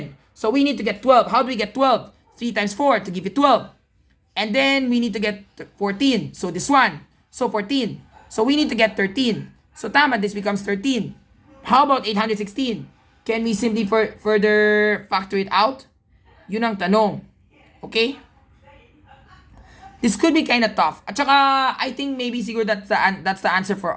So we need to get 12. How do we get 12? 3 times 4 to give you 12. And then we need to get 14. So this one. So 14. So we need to get 13. So tama, this becomes 13. How about 816? Can we simply further factor it out? Yun ang tanong. Okay? This could be kind of tough. At saka, I think maybe siguro that's the answer for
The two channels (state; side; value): identical; both; correlation 1.00